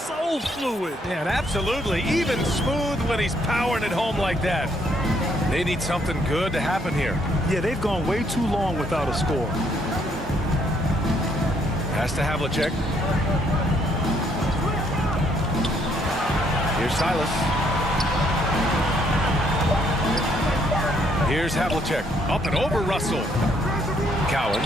fluid. Yeah, and absolutely. Even smooth when he's powering it home like that. They need something good to happen here. Yeah, they've gone way too long without a score. Pass to Havlicek. Here's Silas. Here's Havlicek. Up and over Russell.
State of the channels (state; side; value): normal; both; correlation 0.69